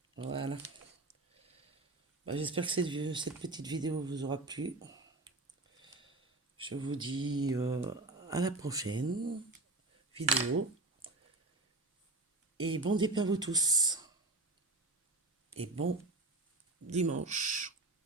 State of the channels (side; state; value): left; quieter; 3.0 dB